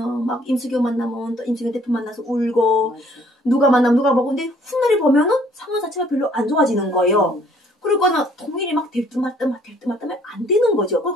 막 임수경 만나면 또 임수경 대표 만나서 울고 맞아. 누가 만나면 누가 먹고 근데 훗날에 보면은 상황 자체가 별로 안 좋아지는 거예요. 그러고는 통일이 막 될 듯 말 듯 안 되는 거죠.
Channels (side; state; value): both; normal; correlation 0.61